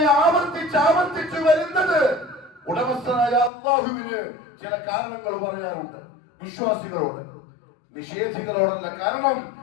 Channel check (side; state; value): right; drops out; at 3.5 s